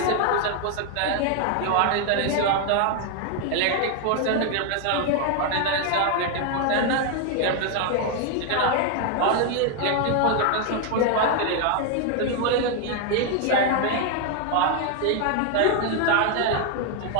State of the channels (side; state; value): both; different; correlation 0.01